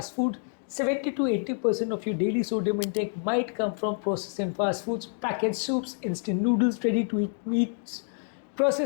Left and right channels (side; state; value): right; silent; 59 dB below the other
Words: food. 70 to 80% of your daily sodium intake might come from processed and fast foods, packaged soups, instant noodles, ready to eat meats,